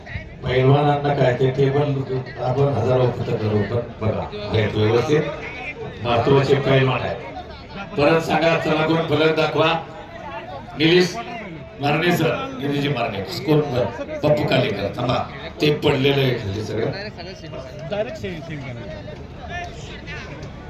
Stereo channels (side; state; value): both; identical; correlation 1.00